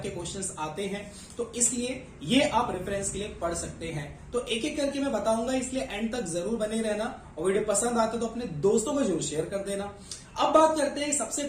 क्वेश्चंस आते हैं, तो इसलिए ये आप रेफरेंस के लिए पढ़ सकते हैं। तो एक एक करके मैं बताऊंगा, इसलिए एंड तक जरूर बने रहना, और वीडियो पसंद आते तो अपने दोस्तों को जरूर शेयर कर देना। अब बात करते हैं सबसे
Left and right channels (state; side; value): identical; both; correlation 1.00